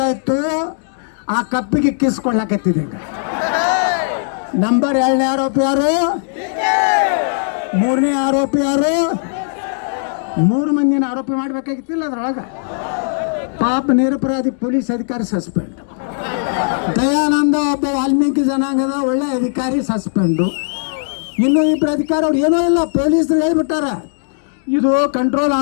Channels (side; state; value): right; silent; digital silence